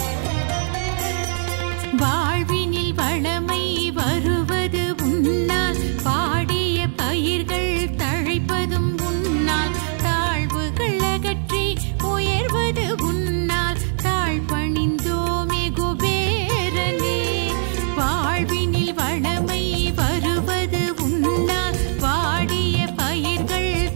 வாழ்வினில் வளமை வருவது உன்னால் பாடிய பயிர்கள் தழைப்பதும் உன்னால் தாழ்வுகள் அகற்றி உயர்வது உன்னால் தாழ் பணிந்தோமே குபேரனே வாழ்வினில் வளமை வருவது உன்னால் பாடிய பயிர்கள்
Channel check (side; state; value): left; silent; 64 dB below the other